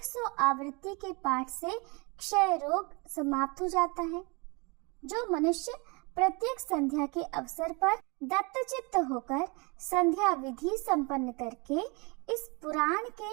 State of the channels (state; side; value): quieter; left; 29.5 dB